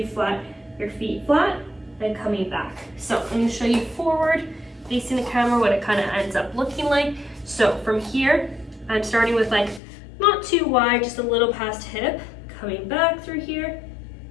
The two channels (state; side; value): drops out; right; at 9.8 s